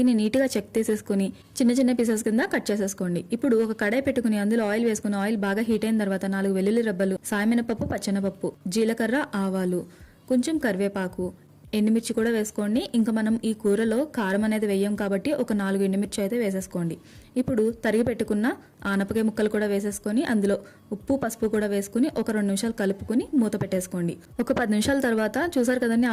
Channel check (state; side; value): identical; both; correlation 1.00